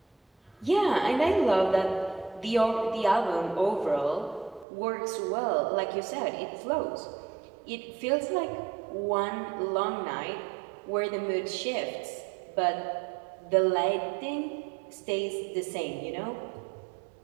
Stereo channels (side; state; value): left; drops out; at 4.7 s